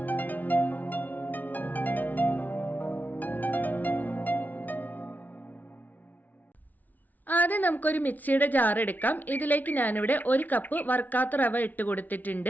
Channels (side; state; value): right; late; 0.080 ms